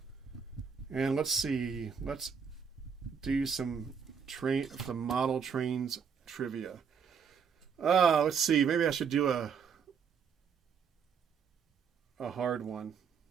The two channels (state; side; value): quieter; left; 6.6 dB